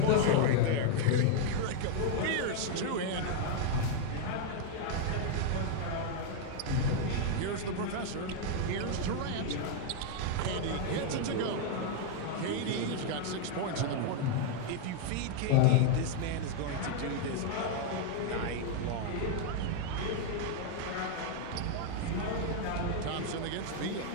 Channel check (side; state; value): both; different; correlation 0.00